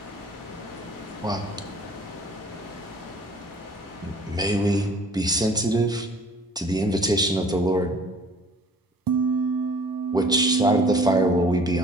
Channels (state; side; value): normal; both; correlation 0.51